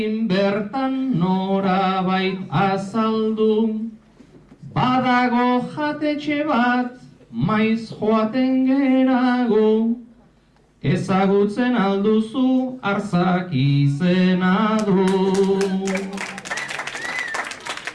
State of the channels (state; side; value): identical; both; correlation 1.00